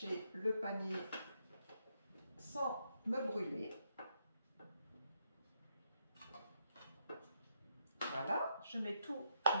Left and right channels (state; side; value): inverted; both; correlation -0.77